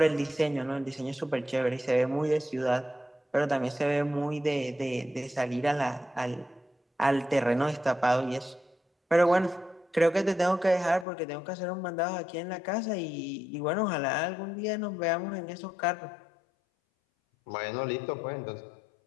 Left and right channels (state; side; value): drops out; right; at 11.1 s